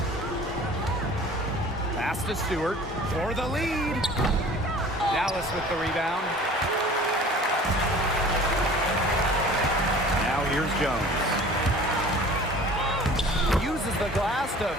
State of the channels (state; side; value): normal; both; correlation 0.45